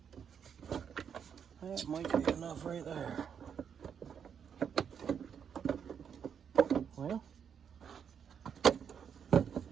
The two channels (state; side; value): quieter; left; 7.6 dB